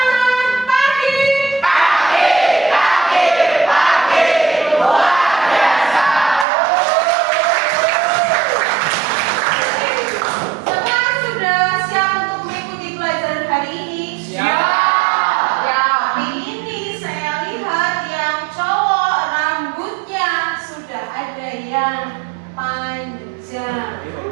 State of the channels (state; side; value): drops out; left; at 6.5 s